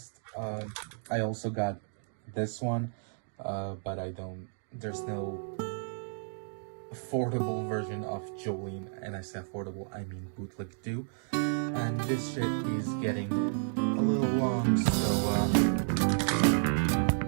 I also got this one, but there's no affordable version of Jolene, and I say affordable, I mean bootleg too. And this shit is getting a little long, so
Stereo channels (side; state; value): left; silent; digital silence